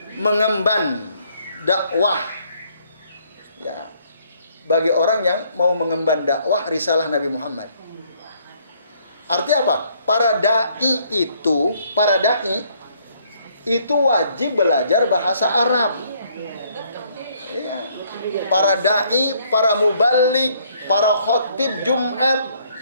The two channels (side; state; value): both; inverted; correlation -0.66